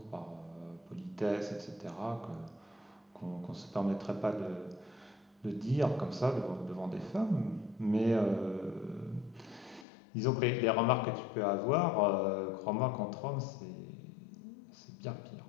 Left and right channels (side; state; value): right; drops out; at 9.9 s